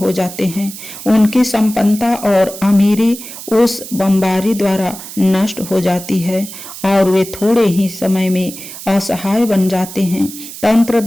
जाते हैं। उनकी संपन्नता और अमीरी उस बमबारी द्वारा नष्ट हो जाती है और वे थोड़े ही समय में असहाय बन जाते हैं। तंत्र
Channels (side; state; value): right; noise; hiss, 12 dB below the sound